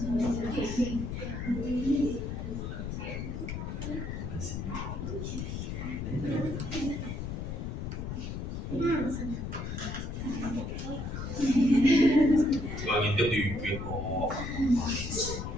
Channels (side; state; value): left; noise; rumble, 5 dB below the sound